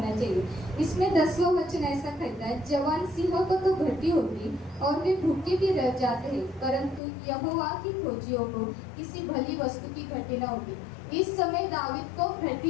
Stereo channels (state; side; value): drops out; right; at 7.0 s